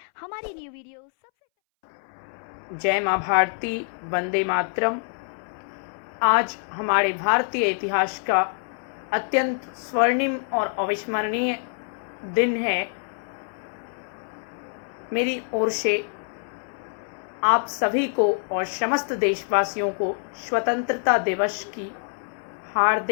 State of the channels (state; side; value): silent; right; 61 dB below the other